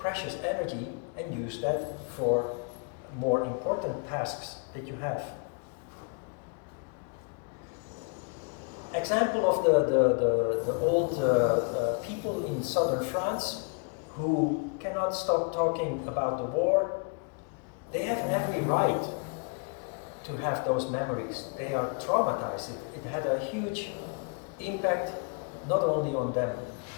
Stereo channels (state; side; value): quieter; right; 36.0 dB